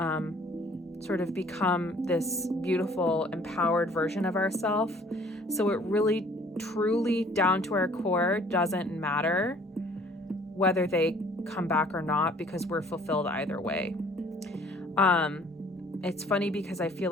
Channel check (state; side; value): normal; both; correlation 0.55